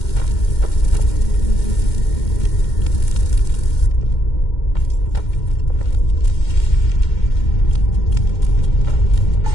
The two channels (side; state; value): right; late; 2.1 ms